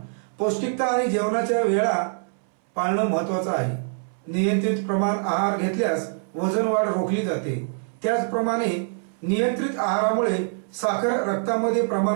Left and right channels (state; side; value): silent; left; 62 dB below the other